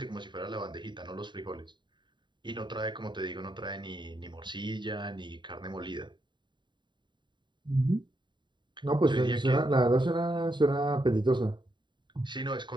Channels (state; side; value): late; left; 0.22 ms